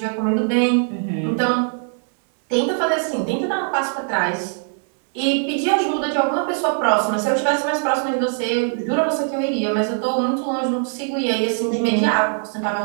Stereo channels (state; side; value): silent; left; 61 dB below the other